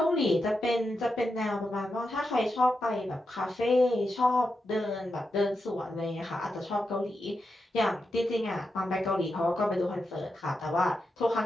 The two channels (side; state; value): both; normal; correlation 0.87